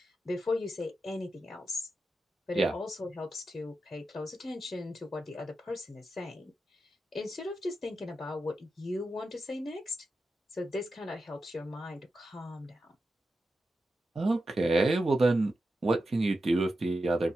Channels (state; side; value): normal; both; correlation 0.90